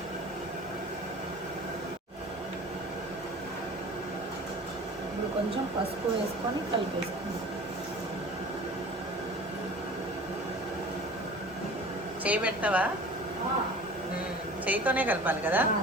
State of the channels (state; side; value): normal; both; correlation 0.42